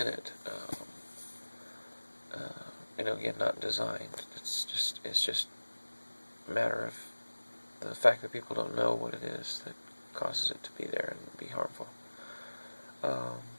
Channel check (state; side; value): inverted; both; correlation -1.00